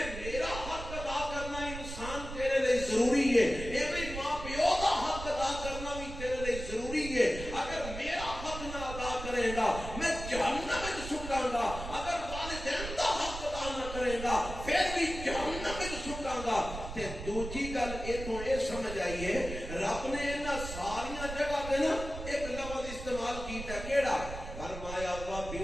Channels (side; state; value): right; noise; rumble, 9 dB below the sound